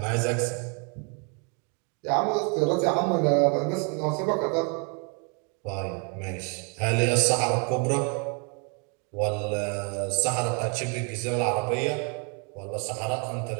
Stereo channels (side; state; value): left; quieter; 36.7 dB